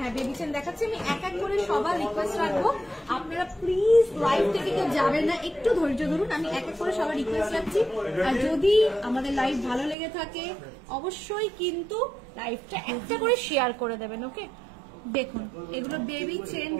বেবি চেন দেখাচ্ছি। আমি এক এক করে সবার রিকোয়েস্ট রাখবো, আপনারা প্লিজ লাইভ থেকে কেউ যাবেন না, একটু ধৈর্য ধরুন। আমি এক এক করে সবার রিকোয়েস্ট রাখছি। আর যদি আমাদের লাইভ ভালো লেগে থাকে অবশ্যই কিন্তু লাইভটা একটা করে শেয়ার করে দেবেন। ওকে, দেখুন এগুলো বেবি চেন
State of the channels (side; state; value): left; drops out; at 10.0 s